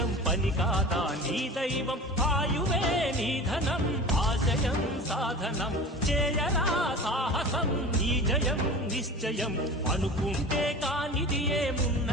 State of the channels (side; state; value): both; normal; correlation 0.35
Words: పని కాదా నీ దైవం, ఆయువే నీ ధనం ఆశయం సాధనం. చేయరా సాహసం నీ జయం నిశ్చయం. అనుకుంటే కానిది